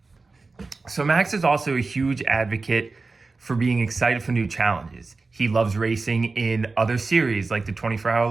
So Max is also a huge advocate for being excited for new challenges. He loves racing in other series like the 24-hour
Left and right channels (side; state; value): left; quieter; 3.9 dB